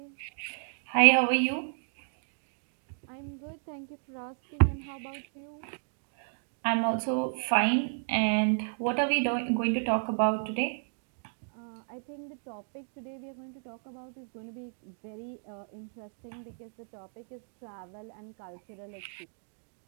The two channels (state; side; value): silent; left; digital silence